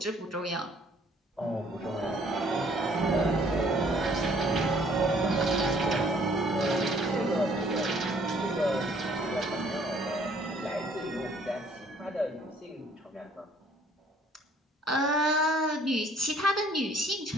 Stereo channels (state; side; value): normal; both; correlation 0.60